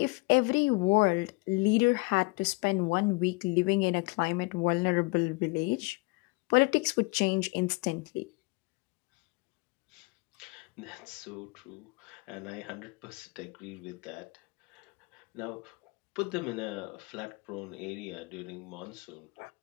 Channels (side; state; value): right; quieter; 27.8 dB